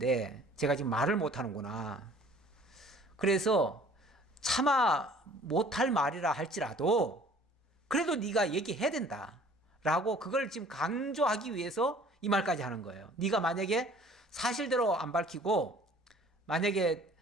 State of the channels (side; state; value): both; normal; correlation 0.52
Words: 제가 지금 말을 못하는구나. 그래서 차마 못할 말이라 할지라도 그래도 네가 얘기해야 된다 라고 그걸 지금 강조하기 위해서 이 말까지 하는 거예요. 네가 만약에 사실대로 안 밝히고 만약에